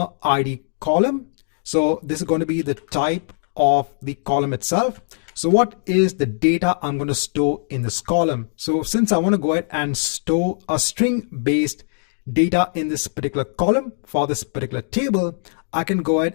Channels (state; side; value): silent; right; digital silence